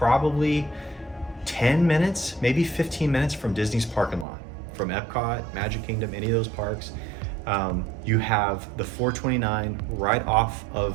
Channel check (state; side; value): drops out; left; at 4.2 s